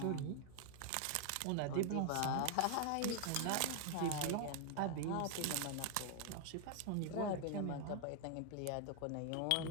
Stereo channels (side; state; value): both; different; correlation 0.00